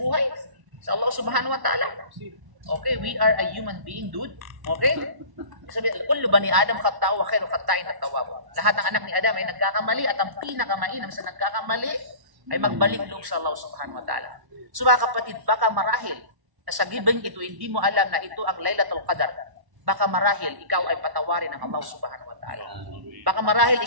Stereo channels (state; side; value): late; left; 1.1 ms